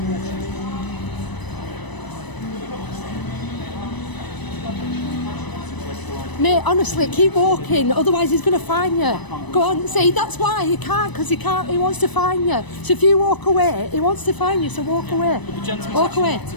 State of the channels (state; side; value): late; right; 1.0 ms